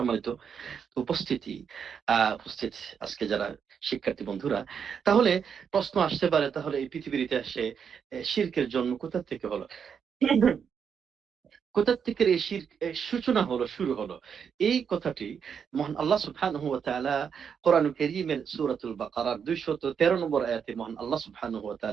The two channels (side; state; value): left; quieter; 7.1 dB